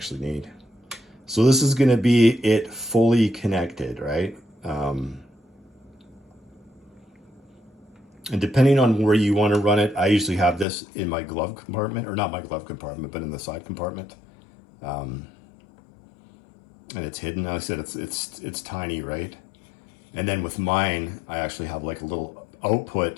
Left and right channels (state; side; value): drops out; right; at 10.7 s